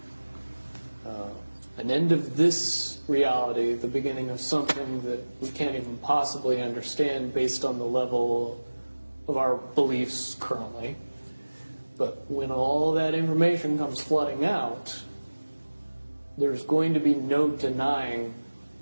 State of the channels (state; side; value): inverted; both; correlation -1.00